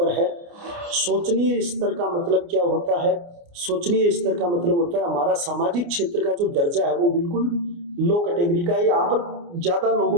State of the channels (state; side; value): late; left; 29 ms